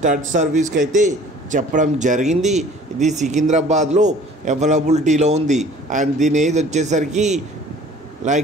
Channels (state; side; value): normal; both; correlation 0.50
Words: సర్వీస్కి అయితే చెప్పడం జరిగింది. ఇది సికింద్రాబాద్లో అవైలబిలిటీలో ఉంది. అండ్ దీని ఏజ్ వచ్చేసరికి